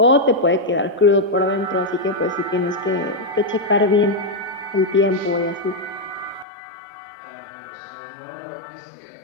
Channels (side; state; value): right; drops out; at 6.5 s